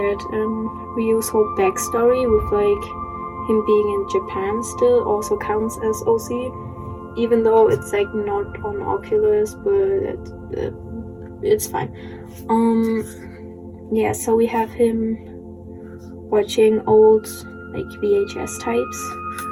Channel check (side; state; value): both; identical; correlation 1.00